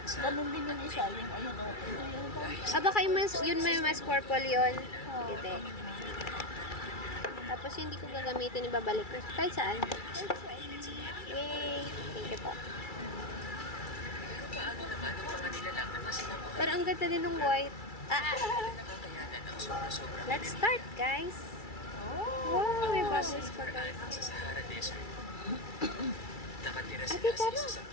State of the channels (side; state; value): right; late; 2.3 ms